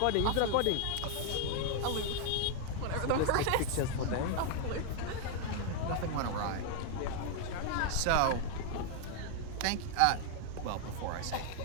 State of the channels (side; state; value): both; different; correlation 0.00